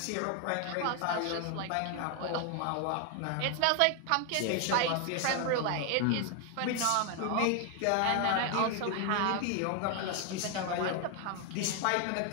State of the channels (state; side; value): different; both; correlation 0.01